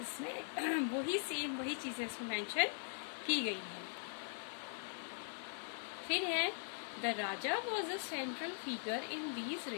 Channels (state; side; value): silent; right; digital silence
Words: इसमें वही चीजें इसमें मेंशन की गई है। फिर है the Raja was a central figure in these